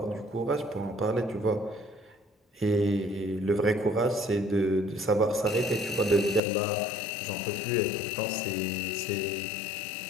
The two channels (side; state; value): right; drops out; at 6.4 s